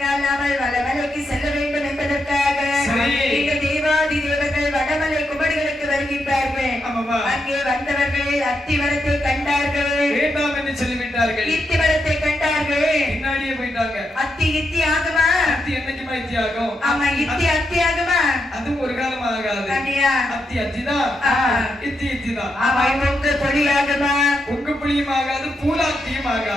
நாமல் வடமலைக்கு செல்ல வேண்டும் என்பதற்காக இந்த தேவாதி தேவர்கள் வடமலை குமரிகளுக்கு வருகின்றார்கள். அங்கே வந்தவர்கள் அத்தி மரத்தை கண்டார்கள். வேண்டாம் என்று சொல்லிவிட்டார்கள். இத்தி மரத்தை கண்டார்கள். பின்னாடியே போயிட்டாங்க. அத்தி இத்தி ஆகுமா? அத்தி என்னைக்குமா இத்தி ஆகும்? ஆமா, இத்தி அத்தி ஆகுமா? அது ஒரு காலம் ஆகாது. அத்தி அத்திதான், இத்தி இத்திதான். ஆமா, உங்க பொழியாகுமா? உங்க புளியும் ஆகாது, பூலாத்தியும்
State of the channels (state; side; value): normal; both; correlation 0.83